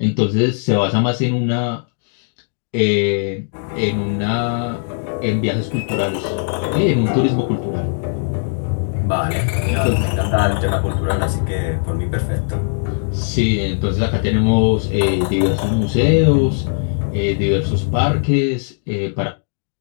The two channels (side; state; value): right; silent; digital silence